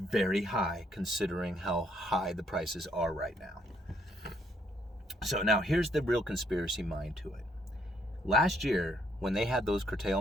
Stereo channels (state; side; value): normal; both; correlation 0.71